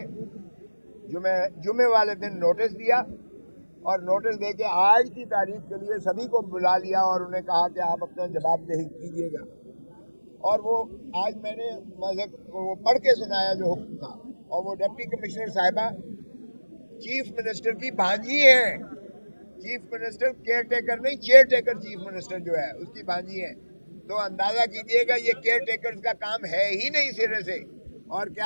जुमे वाले दिन नोटिस दिया और नोटिस दे के आज की तारीख के लिए सभी को बुला लिया और उन्हें कहा कि आप अपना जवाबदेही कीजिएगा। और वो आज मैंने वो पढ़ के सुनाया जो हुक्म था, और वो डिप्टी कमिश्नर साहिबा चीफ मिनिस्टर की भांजी है। चीफ मिनिस्टर केयर टेकर नहीं, चेयर टेकर चीफ मिनिस्टर जो है उसकी भांजी है। तो अंदाजा कीजिएगा ये केयर टेकर्स का काम है ही नहीं सिरे से। और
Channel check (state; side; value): inverted; both; correlation -1.00